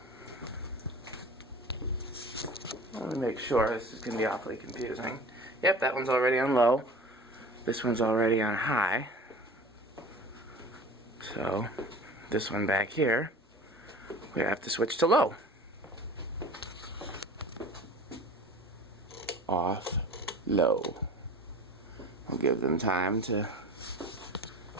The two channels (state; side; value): normal; both; correlation 0.40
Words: Let me make sure, this is going to be awfully confusing. Yep, that one's already on low. This one's already on high. So this one back here, we have to switch to low. Off, low. We'll give them time to